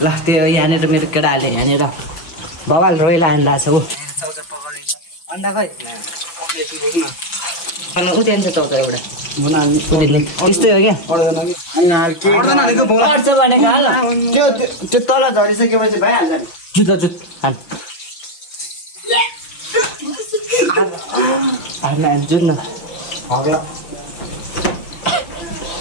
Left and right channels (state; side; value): late; right; 5.9 ms